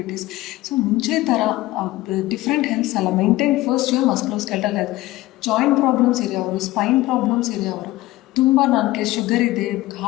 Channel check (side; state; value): right; quieter; 17.6 dB